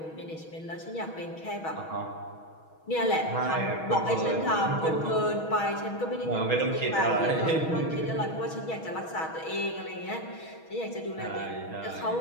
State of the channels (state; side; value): late; right; 6.2 ms